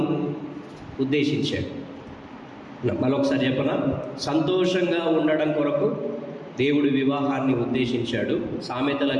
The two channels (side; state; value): both; identical; correlation 1.00